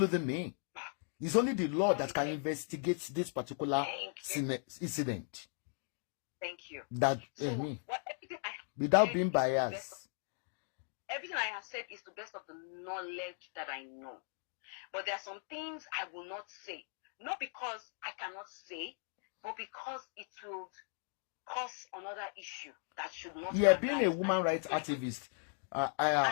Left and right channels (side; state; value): right; silent; 53 dB below the other